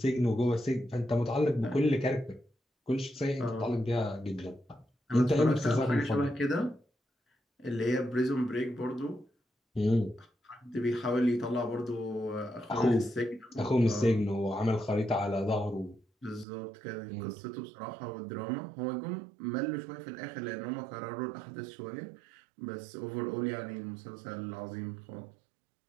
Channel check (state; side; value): drops out; left; at 16.4 s